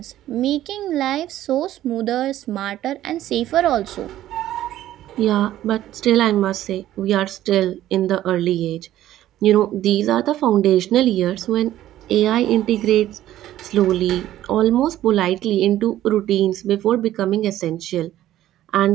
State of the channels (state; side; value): quieter; left; 13.4 dB